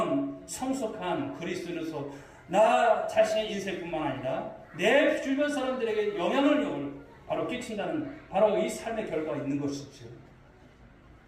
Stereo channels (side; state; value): both; identical; correlation 1.00